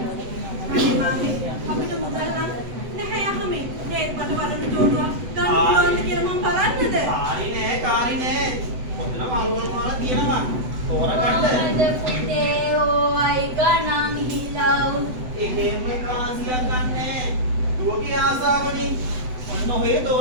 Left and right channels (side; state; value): left; late; 7.9 ms